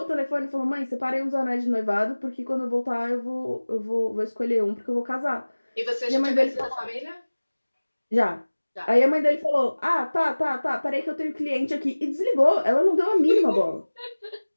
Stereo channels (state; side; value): inverted; both; correlation -1.00